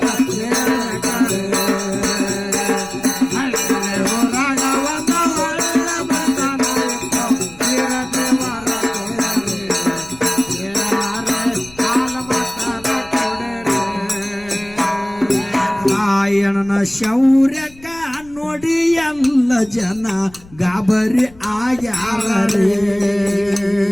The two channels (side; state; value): left; noise; rumble, 23 dB below the sound